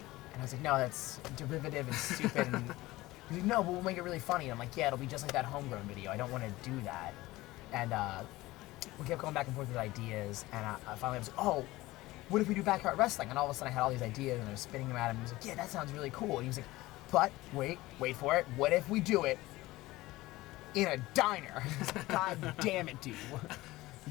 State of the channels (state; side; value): quieter; right; 18.7 dB